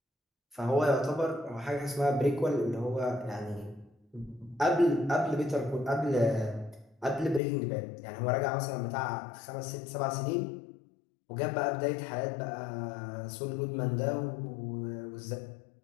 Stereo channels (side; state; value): right; drops out; at 7.4 s